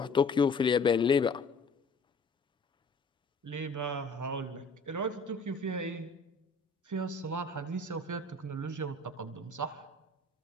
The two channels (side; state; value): right; quieter; 3.3 dB